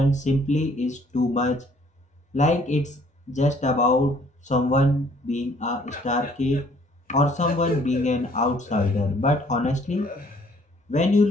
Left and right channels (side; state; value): both; normal; correlation 0.60